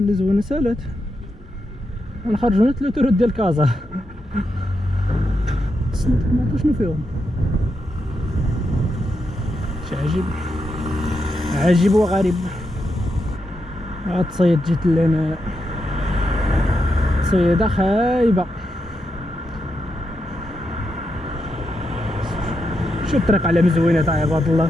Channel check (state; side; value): normal; both; correlation 0.84